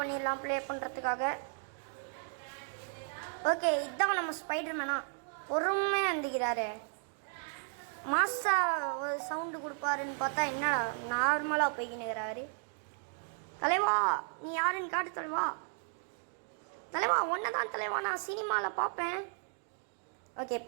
ப்ளே பண்ணுறதுக்காக. ஓகே, இதுதான் நம்ம ஸ்பைடர்மேனா பொறுமையாக இருந்துக்கிறாரு. மாசா ஒரு சவுண்டு கொடுப்பாருன்னு பார்த்தா என்னடா நார்மலாக போய்க்கினுக்கிறாரு. தலைவா நீ யாருன்னு காட்டு தலைவா. தலைவா ஒன்றை தான் தலைவா, நான் சினிமாவில் பார்ப்பேன். ஓகே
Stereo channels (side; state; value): left; silent; 55 dB below the other